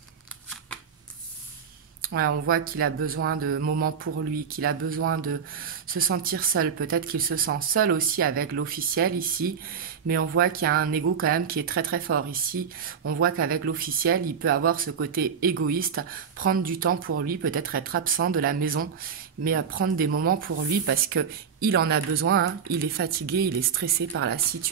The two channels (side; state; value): left; quieter; 6.8 dB